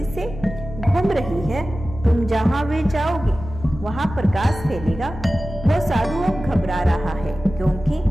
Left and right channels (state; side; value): normal; both; correlation 0.95